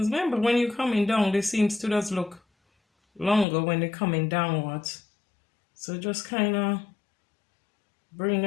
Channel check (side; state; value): right; drops out; at 3.5 s